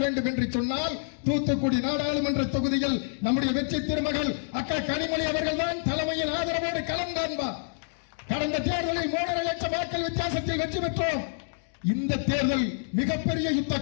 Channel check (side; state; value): right; silent; digital silence